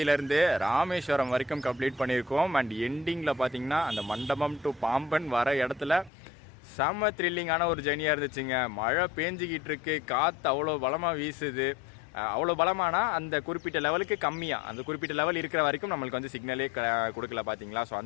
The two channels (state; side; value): drops out; right; at 6.1 s